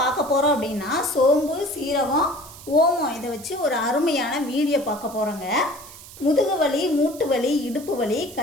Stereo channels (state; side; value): noise; right; hiss, 17 dB below the sound